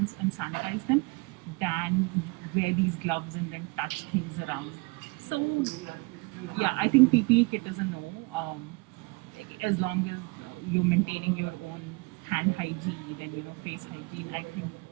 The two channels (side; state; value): left; quieter; 27.4 dB